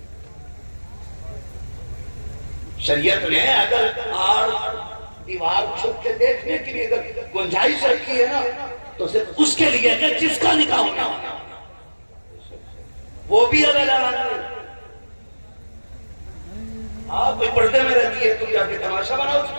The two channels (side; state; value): both; inverted; correlation -1.00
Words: شریعت نے اگر آڑ دیوار چھپ کے دیکھنے کے لیے اگر گنجائش رکھی ہے نا تو صرف اس کے لیے کہ جس کا نکاح ہونا وہ بھی اگر آپ کوئی پردے میں رہتی ہے تم جا کے تماشا بناؤ اس